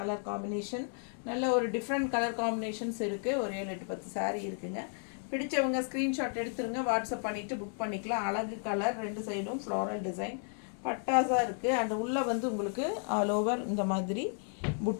காம்பினேஷன் நல்ல ஒரு டிஃப்ரெண்ட் கலர் காம்பினேஷன்ஸ் இருக்குது. ஒரு 7-8-10 சாரீ இருக்குங்க. பிடிச்சவங்க ஸ்க்ரீன்ஷாட் எடுத்துருங்க, வாட்ஸ்அப் பண்ணிவிட்டு புக் பண்ணிக்கலாம். அழகு கலர், ரெண்டு சைடும் ஃப்ளோரல் டிசைன், பட்டாஸாக இருக்குது. அண்ட் உள்ளே வந்து உங்களுக்கு ஆல் ஓவர் இந்த மாதிரி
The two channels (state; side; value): silent; right; 56 dB below the other